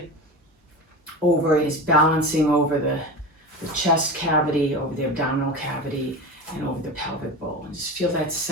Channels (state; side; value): normal; both; correlation 0.28